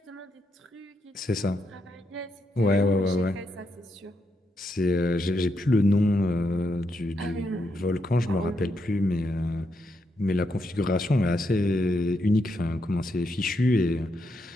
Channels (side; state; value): both; normal; correlation 0.81